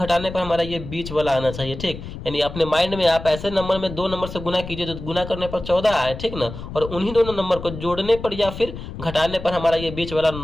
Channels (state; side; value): noise; left; rumble, 10 dB below the sound